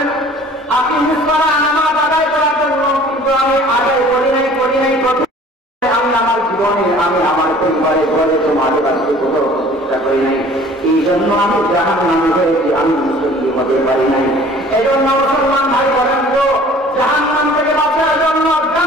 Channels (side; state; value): both; normal; correlation 0.50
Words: আকিমিস সালাহ, নামাজ আদায় করার জন্য, কিন্তু আমি আদায় করি নাই। আমি আমার জীবনে আমি আমার পরিবারে ঘরে সমাজে বাঁচতে কোথাও চেষ্টা করি নাই, এই জন্য আমি জাহান্নামী হয়েছি, আমি মুসলিম হতে পারি নাই। এই জন্য মুসলমান ভাই বলেন তো জাহান্নাম থেকে বাঁচার জন্য,